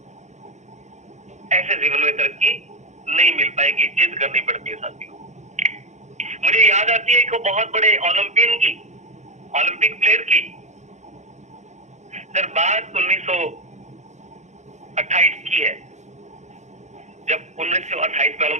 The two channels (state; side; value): late; left; 0.34 ms